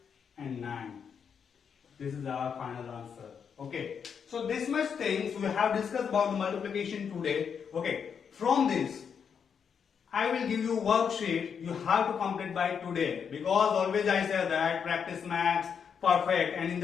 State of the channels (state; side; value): quieter; right; 7.0 dB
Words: and 9. This is our final answer. Okay. So this much things we have discussed about multiplication today. Okay. From this, I will give you a worksheet you have to complete by today. Because always I say that practice makes perfect. And in